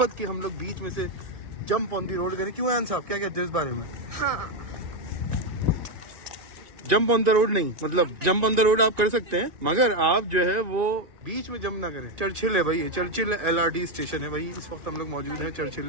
कि हम लोग बीच में से जंप ऑन दी रोड करें। क्यों आन साहब, क्या कहते हैं इस बारे में? हाँ जंप ऑन द रोड नहीं, मतलब जंप ऑन द रोड आप कर सकते हैं, मगर आप जो है वो बीच में जंप ना करें। चर्चिल है भाई, ये चर्चिल LRT स्टेशन है भाई, इस वक्त हम लोग मौजूद हैं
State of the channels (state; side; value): late; left; 1.9 ms